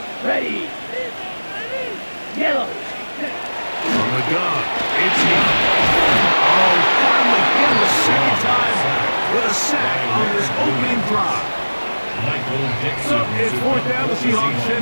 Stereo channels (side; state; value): both; inverted; correlation -1.00